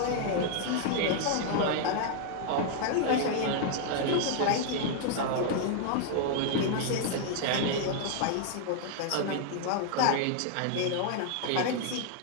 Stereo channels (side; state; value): both; different; correlation 0.00